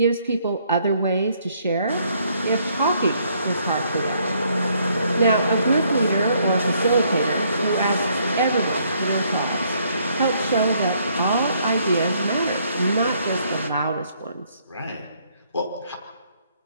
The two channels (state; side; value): inverted; both; correlation -0.68